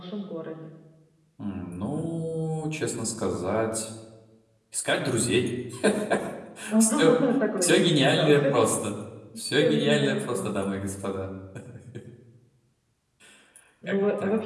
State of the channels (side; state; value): both; identical; correlation 1.00